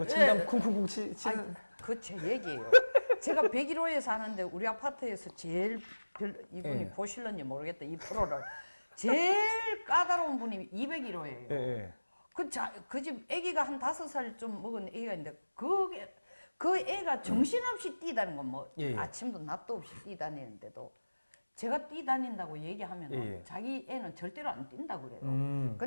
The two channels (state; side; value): inverted; both; correlation -1.00